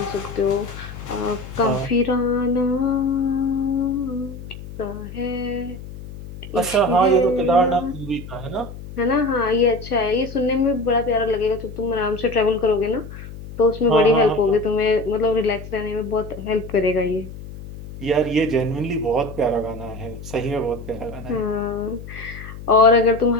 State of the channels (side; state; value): left; noise; hum, 13 dB below the sound